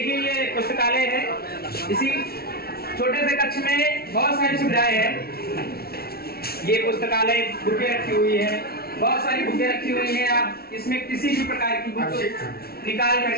ये पुस्तकालय है। इसी छोटे से कक्ष में बहुत सारी सुविधाएं हैं। ये पुस्तकालय बुकें रखी हुई है, बहुत सारी बुकें रखी हुई हैं। आप इसमें किसी भी प्रकार की बुक निकाल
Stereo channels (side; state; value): right; late; 0.44 ms